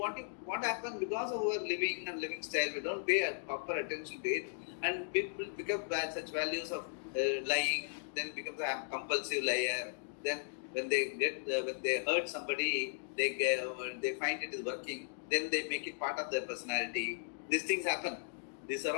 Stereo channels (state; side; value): silent; right; digital silence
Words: happens because of our living and living style. We don't pay proper attention to it, and people pick up such values of lying. Then becomes a compulsive liar. Then when they hurt somebody, they find it is working. Then they make it part of their personality. These things happen. These are